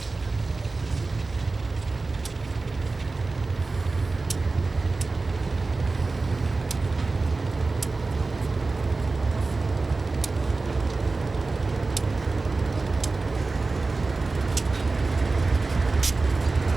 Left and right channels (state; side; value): quieter; left; 3.7 dB